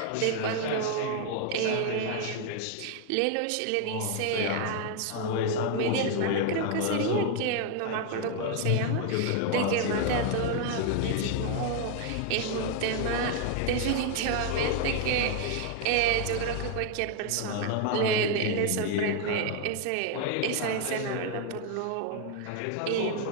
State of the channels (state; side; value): different; both; correlation 0.00